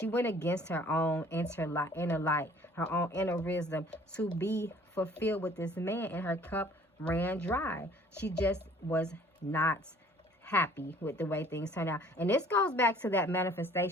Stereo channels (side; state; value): both; normal; correlation 0.54